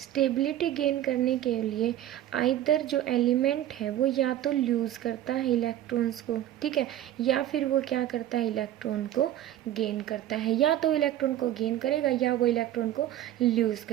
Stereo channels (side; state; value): left; quieter; 12.5 dB